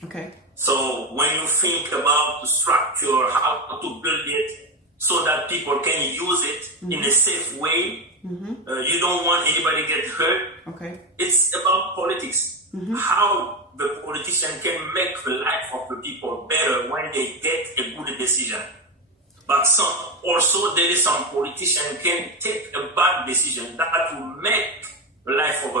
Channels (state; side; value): normal; both; correlation 0.14